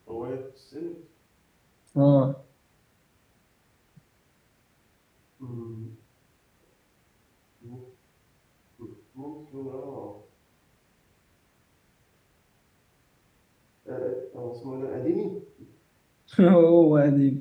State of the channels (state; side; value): identical; both; correlation 1.00